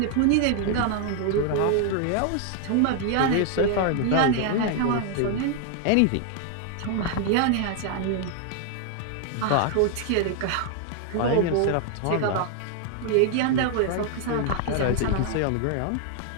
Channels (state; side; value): different; both; correlation 0.00